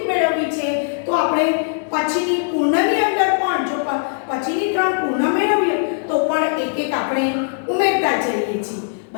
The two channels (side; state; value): right; silent; digital silence